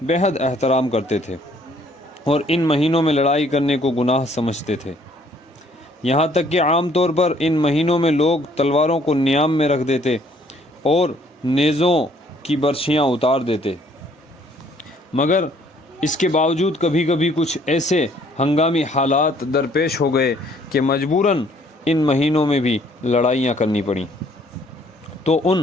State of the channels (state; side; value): normal; both; correlation 0.62